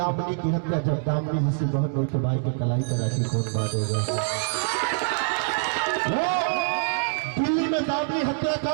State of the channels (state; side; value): silent; left; 62 dB below the other